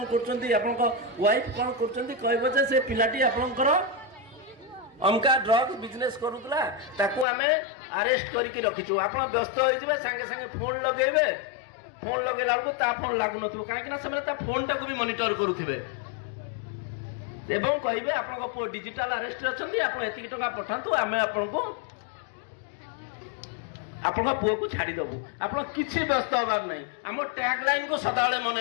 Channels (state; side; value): drops out; right; at 7.2 s